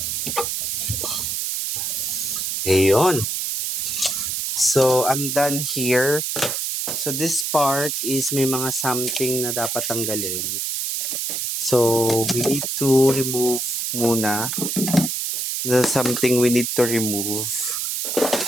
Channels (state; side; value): noise; right; hiss, 1 dB below the sound